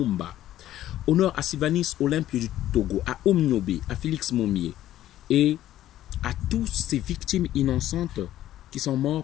Honneur à Sylvanus Olympio du Togo, à Omniobe, à Félix Momier et à tous ces victimes innocentes qui sont morts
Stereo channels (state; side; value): quieter; right; 13.1 dB